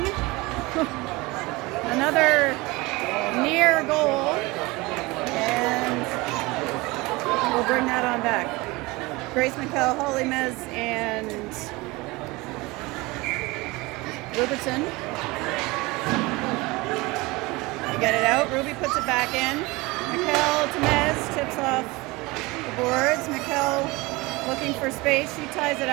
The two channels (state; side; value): quieter; left; 22.9 dB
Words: Another near goal. And we'll bring that on back. Grace McKell, Holly Mez, and Robertson. You get it out. Ruby puts it back in. McKell to Mez, tips off the boards. McKell looking for space. She ties it